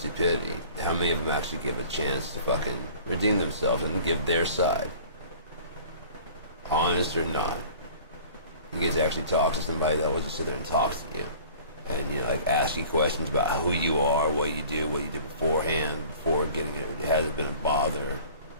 How many of them actually give a chance to fucking redeem themselves and give their side? Honest or not. You get to actually talk to somebody that will just sit there and talk to you. And, you know, like ask you questions about who you are, what you did beforehand, before getting it. Has it been a bother?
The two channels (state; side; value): inverted; both; correlation -0.47